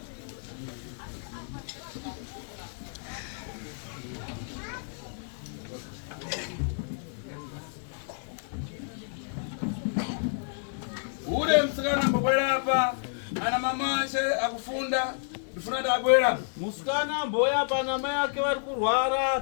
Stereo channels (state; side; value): silent; right; digital silence